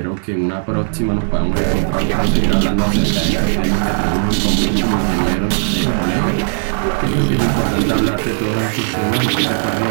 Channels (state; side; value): silent; left; digital silence